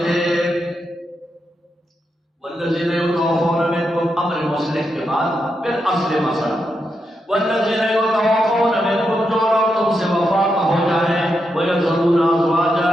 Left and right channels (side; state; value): both; normal; correlation 0.84